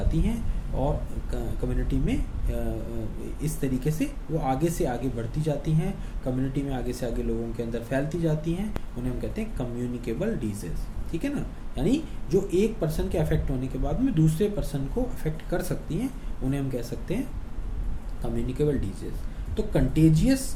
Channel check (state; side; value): identical; both; correlation 1.00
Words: हैं और कम्युनिटी में इस तरीके से वो आगे से आगे बढ़ती जाती हैं, कम्युनिटी में आगे से आगे लोगों के अंदर फैलती जाती हैं, उन्हें हम कहते हैं कम्युनिकेबल डिजीज़, ठीक है ना। यानी जो एक पर्सन के अफेक्ट होने के बाद में दूसरे पर्सन को अफेक्ट कर सकती हैं, उन्हें हम कह सकते हैं कम्युनिकेबल डिजीज़। तो कंटेजियस